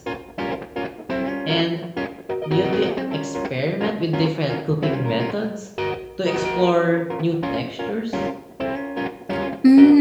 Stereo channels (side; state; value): both; identical; correlation 1.00